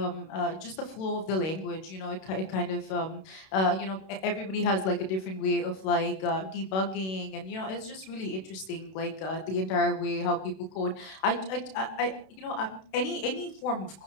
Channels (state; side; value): late; right; 32 ms